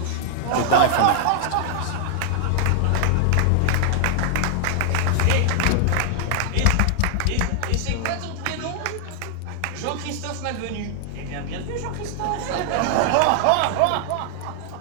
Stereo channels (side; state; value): both; different; correlation 0.00